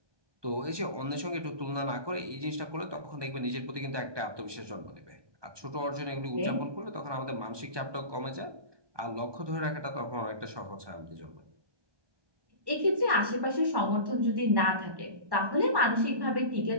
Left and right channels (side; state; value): left; late; 1.2 ms